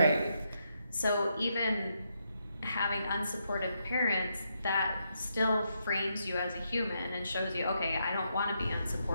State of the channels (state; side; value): inverted; both; correlation -0.80